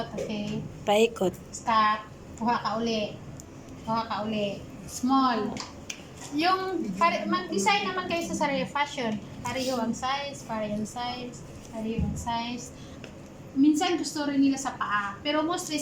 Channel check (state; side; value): identical; both; correlation 1.00